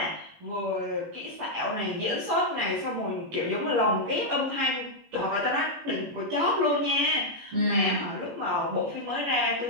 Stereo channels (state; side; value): late; left; 18 ms